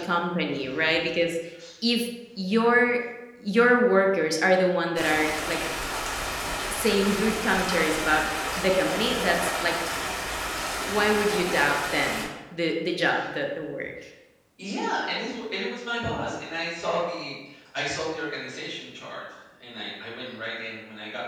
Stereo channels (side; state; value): both; identical; correlation 1.00